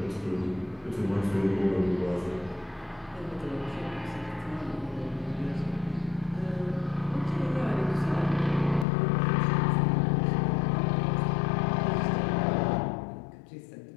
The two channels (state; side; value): drops out; right; at 8.8 s